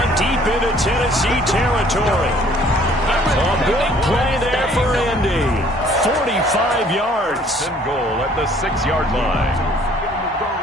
deep into Tennessee territory. A big play there for Indy. 45 yards. And goal at the 6-yard line.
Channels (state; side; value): normal; both; correlation 0.58